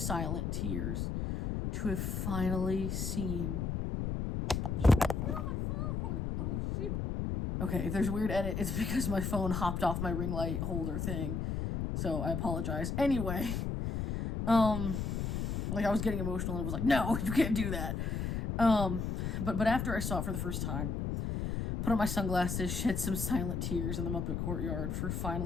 tears to have finally seen. Oh, my phone! Oh, shoot. Okay, if there's a weird edit, it's because my phone hopped off my ring light holder thing. So I apologize. Anyway, I was getting emotional and it was no, you can't do that. But after I saw it for the first time, put on my sunglasses, shed some silent tears in the Muppet courtyard for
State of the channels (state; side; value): noise; left; rumble, 1 dB below the sound